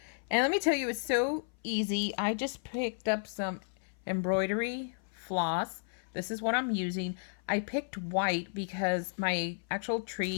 And let me tell you, it's so easy. I just picked up some embroidery floss. This is what I'm using. I picked white because my actual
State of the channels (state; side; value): silent; right; 56 dB below the other